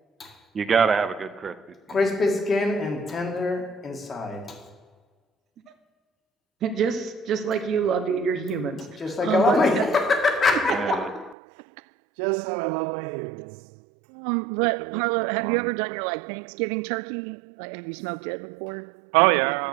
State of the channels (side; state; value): left; drops out; at 11.4 s